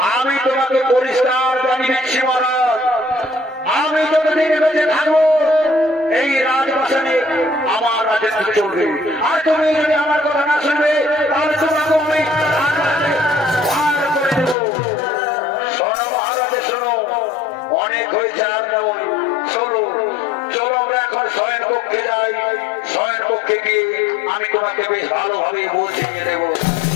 আমি তোমাকে পরিষ্কার জানিয়ে দিচ্ছি মহারাজ, আমি যতদিন বেঁচে থাকবো এই রাজবাসনে আমার রাজত্ব চলবে। আর তুমি যদি আমার কথা না শুনবে তাহলে তোমাকে আমি ভার করে দেব। শোনো মহারাজ, শোনো, অনেক হয়েছে আর নয়। চলো চলো আমরা এখন শয়ন কক্ষে যাই। শয়ন কক্ষে গিয়ে আমি তোমাকে বেশ ভালোভাবে বুঝিয়ে দেবো।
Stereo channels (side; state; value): right; drops out; at 14.6 s